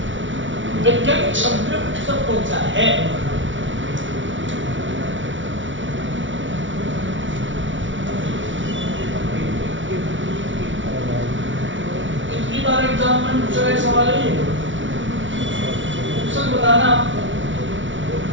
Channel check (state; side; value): late; left; 0.56 ms